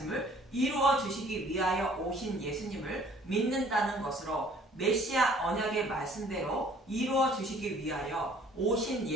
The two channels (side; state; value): both; normal; correlation 0.56